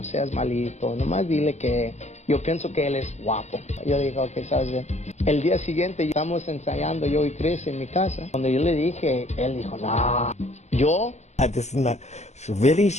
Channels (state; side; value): late; right; 0.33 ms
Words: seas malito, nomás dile que yo pienso que él es guapo. Yo dije, ok, ¿sabes bien? El día siguiente estamos ensayando yo y Chris en mi casa. Cuando yo le dije, él dijo, no, yo. This is not really.